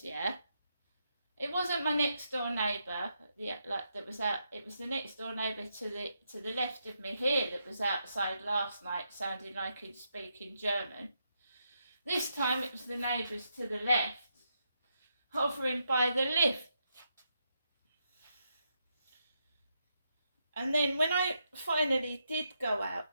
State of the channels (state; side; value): inverted; both; correlation -0.81